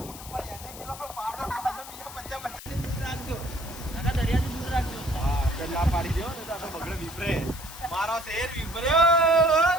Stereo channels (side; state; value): left; noise; hiss, 14 dB below the sound